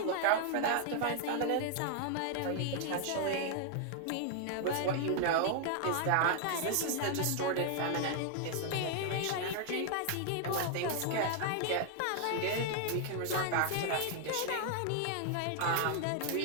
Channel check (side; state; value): both; different; correlation 0.00